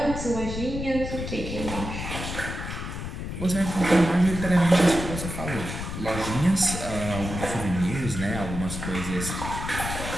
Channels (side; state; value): left; noise; rumble, 6 dB below the sound